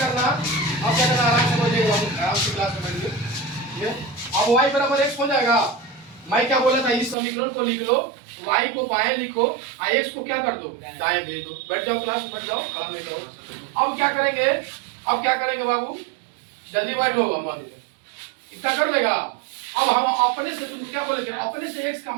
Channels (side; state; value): left; drops out; at 7.2 s